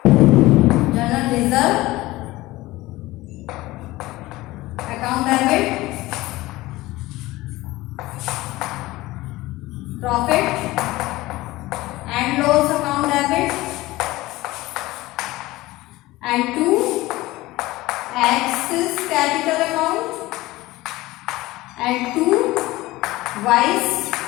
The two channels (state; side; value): quieter; right; 18.8 dB